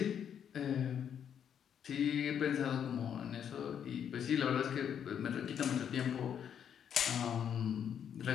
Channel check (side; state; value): right; quieter; 8.6 dB